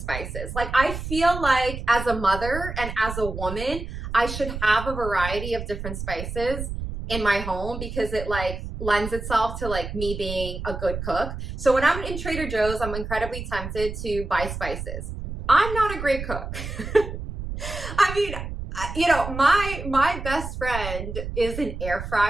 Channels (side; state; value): right; noise; rumble, 7 dB below the sound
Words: spices. Like, I feel like as a mother and as a woman, I should have a variety of different spices in my home, because it like lends itself to like me being a good cook. So when I'm in Trader Joe's, I'm incredibly tempted to buy spices. I'm not a great cook. I mean, you know, my best friend is an air